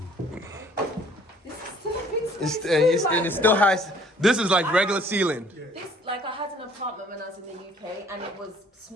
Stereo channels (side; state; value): both; normal; correlation 0.57